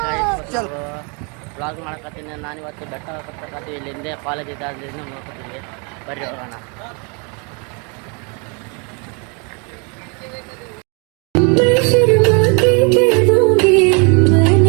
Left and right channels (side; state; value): left; quieter; 34.1 dB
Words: ವ್ಲಾಗ್ ಮಾಡಕತ್ತೀನಿ. ನಾನು ಇವತ್ತು ಬೆಟ್ಟ ಹತ್ತಕತ್ತೀವಿ. ಇಲ್ಲಿಂದ ಕಾಲೇಜ್ ಇದ್ದಾದ್ರಿಂದ ನೋಡ್ಕೊತೀವಿ. ಬರ್ರಿ ಹೋಗೋಣ.